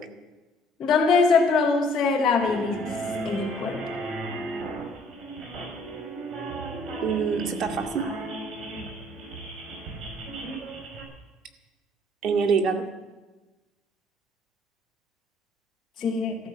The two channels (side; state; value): both; normal; correlation 0.60